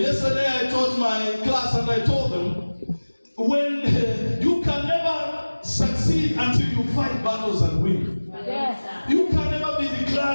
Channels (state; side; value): inverted; both; correlation -1.00